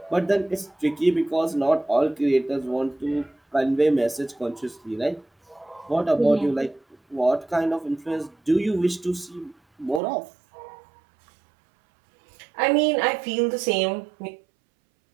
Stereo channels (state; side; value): drops out; left; at 10.0 s